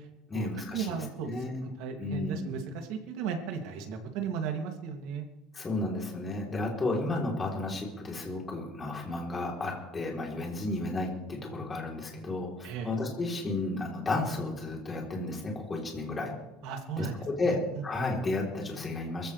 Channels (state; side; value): normal; both; correlation 0.56